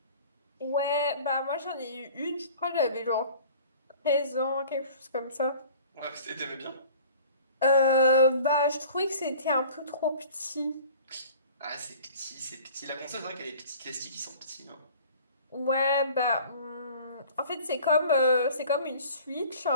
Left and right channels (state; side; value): inverted; both; correlation -0.48